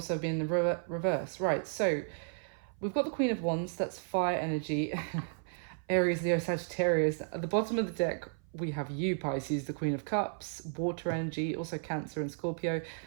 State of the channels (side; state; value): left; silent; 55 dB below the other